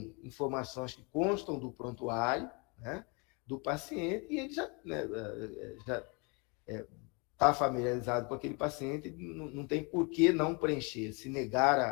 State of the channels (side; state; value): right; quieter; 31.3 dB